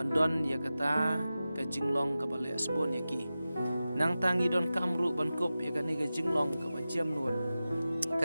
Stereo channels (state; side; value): inverted; both; correlation -0.94